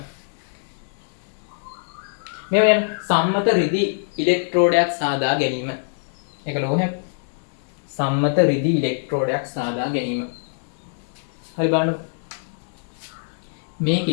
මේ වෙන සම්මත රිදි ඉලෙක්ට්‍රෝඩයක් සාදා ගැනීම. ඒක ලෝහයක්. සම්මත රිදි ඉලෙක්ට්‍රෝඩයක් සාදා ගැනීම. හරි බලන්න.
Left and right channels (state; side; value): silent; right; digital silence